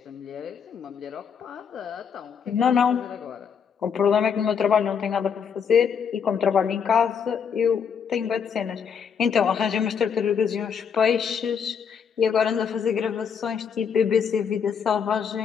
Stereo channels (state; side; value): quieter; right; 7.0 dB